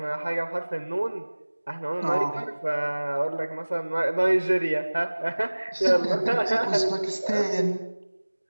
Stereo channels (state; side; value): inverted; both; correlation -1.00